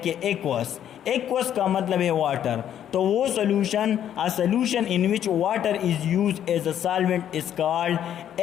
एक्वस का मतलब है वाटर। तो वो solution, a solution in which water is use as a solvent is called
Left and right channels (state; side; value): quieter; right; 10.2 dB